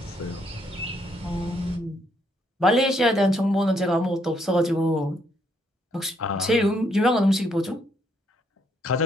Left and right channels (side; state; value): both; normal; correlation 0.72